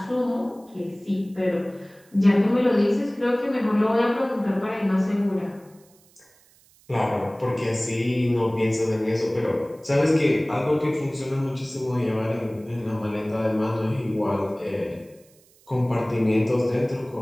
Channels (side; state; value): right; noise; hiss, 30 dB below the sound